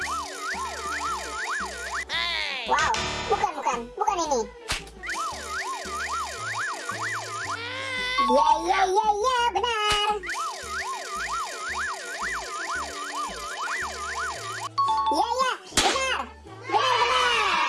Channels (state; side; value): identical; both; correlation 1.00